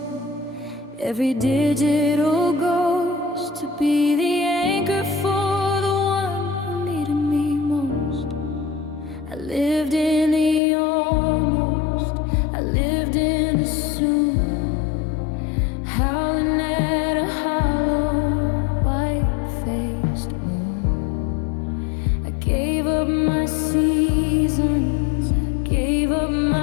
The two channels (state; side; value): drops out; right; at 10.6 s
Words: Every digital ghost to be the anchor for the one who needed me most. I lived in the almost, I lived in the soon, howling at a hollow, white-faced moon. I gave up my seasons, I gave up